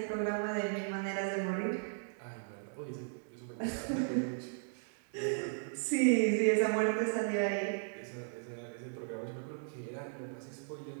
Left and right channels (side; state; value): left; silent; 54 dB below the other